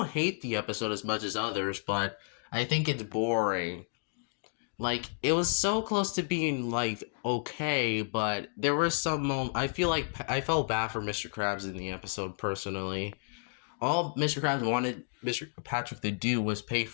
hate the episode as much as others, but I think it's boring. Like, it was so close to being like okay, but there were some I feel like I felt bad for Mr. Krabs in the episode personally. All Mr. Krabs wanted Mr. Patrick to do was pay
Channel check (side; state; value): right; silent; 57 dB below the other